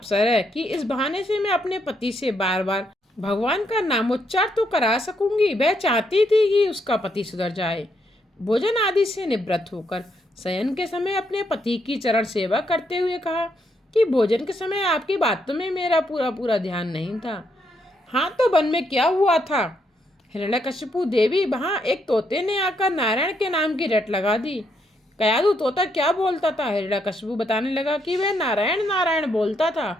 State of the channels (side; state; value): both; normal; correlation 0.76